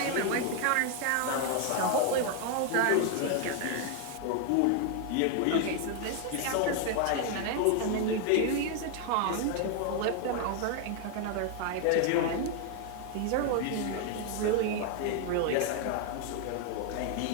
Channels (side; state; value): both; different; correlation 0.00